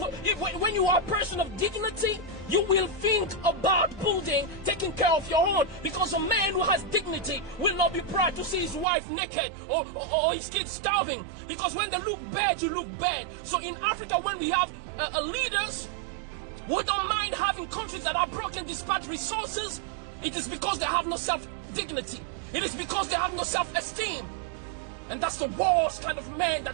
you are a person of dignity, you will think about building, taking care of your own. Because a man who has dignity will not be proud to see his wife naked or his kids starving. Because when they look bad, you look bad. So in Africa, when we have leaders, we don't mind having countries that are broken despite resources. It is because they have no self-dignity. It is because they have no self-esteem. And that's the worst kind of man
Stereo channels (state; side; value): drops out; left; at 8.8 s